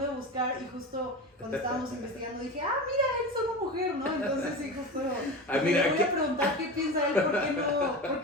de buscar y justo cuando estábamos investigando dije, mira, él es una mujer, ¿no? Entonces sí, justo mira, me voy a preguntar qué piensa él, ¿por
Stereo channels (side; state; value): both; normal; correlation 0.27